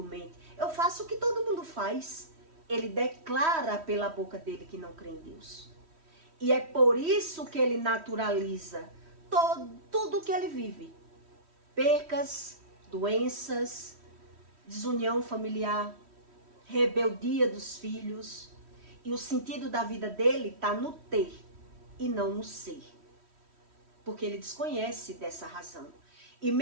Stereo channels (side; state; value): left; late; 3.1 ms